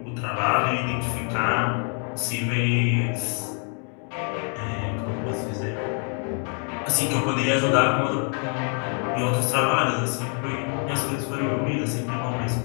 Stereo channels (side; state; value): right; quieter; 39.3 dB